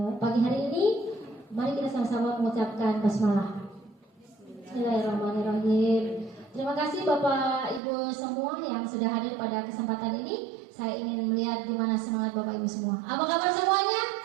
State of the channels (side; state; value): left; drops out; at 7.8 s